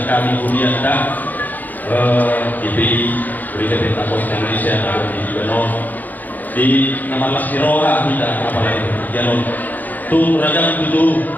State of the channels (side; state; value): right; late; 0.083 ms